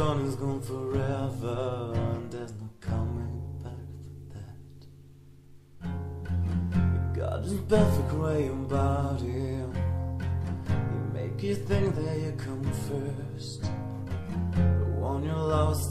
forever, and there's no coming back for that. You got this perfect way about him. He make you think that you come first. But when you're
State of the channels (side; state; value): both; identical; correlation 1.00